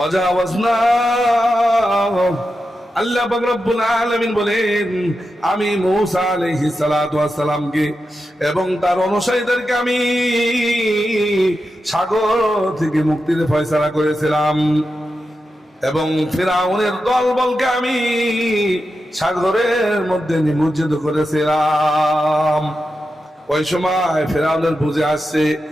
আল্লাহ পাক রব্বুল আলামিন বলেন, আমি মূসা আলাইহিস সালাতু ওয়াস সালামকে এবং তার অনুসারীদেরকে আমি সাগর থেকে মুক্তির ফয়সালা করেছিলাম এবং ফিরআউনের দলবলকে আমি সাগরের মধ্যে নিমজ্জিত করেছিলাম। ওই সময় ফিরআউনের বুঝে আসছে,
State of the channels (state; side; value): normal; both; correlation 0.89